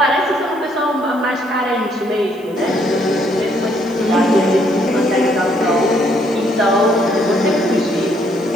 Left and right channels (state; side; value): noise; right; hiss, 28 dB below the sound